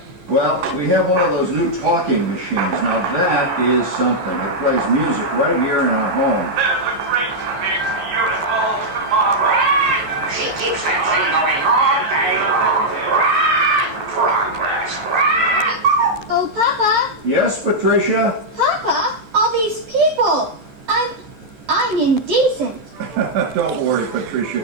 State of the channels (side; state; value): left; late; 12 ms